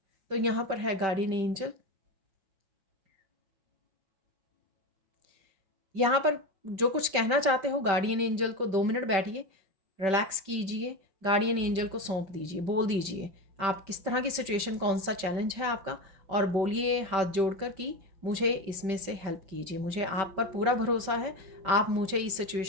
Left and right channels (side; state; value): left; late; 5.2 ms